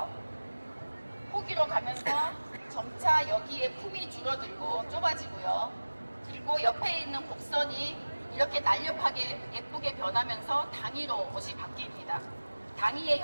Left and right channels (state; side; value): inverted; both; correlation -1.00